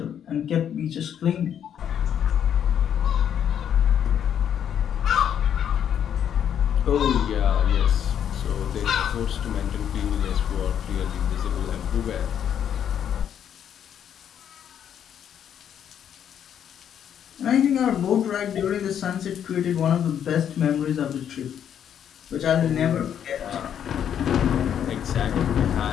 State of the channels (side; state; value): right; quieter; 9.1 dB